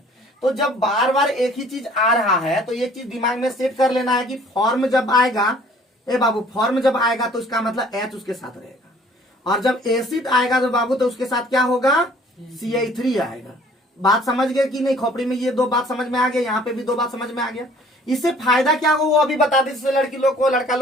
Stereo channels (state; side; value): normal; both; correlation 0.55